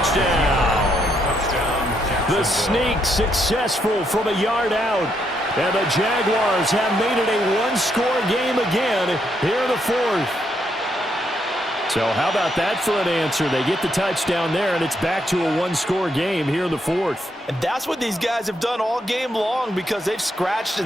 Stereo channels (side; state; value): both; normal; correlation 0.76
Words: The sneak successful from a yard out, and the Jaguars have made it a 1-score game again here in the 4th. So how about that for an answer? They get the touchdown there, and it's back to a 1-score game here in the 4th. And that's what these guys have done all game long because they've scratched and